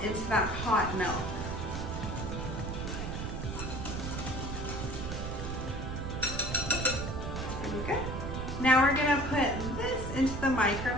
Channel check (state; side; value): noise; right; rumble, 4 dB below the sound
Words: into that hot milk. Pretty good. Now we're going to put this into the